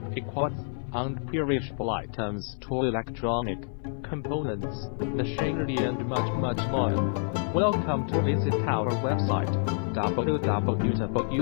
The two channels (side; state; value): right; silent; 59 dB below the other